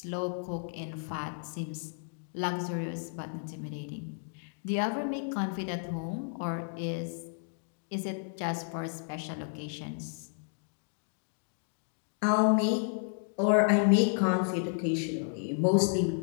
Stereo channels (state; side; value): silent; right; digital silence